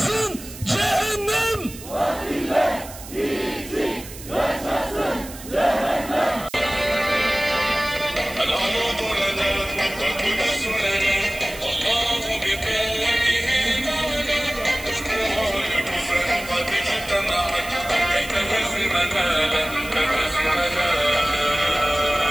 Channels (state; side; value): noise; right; hiss, 15 dB below the sound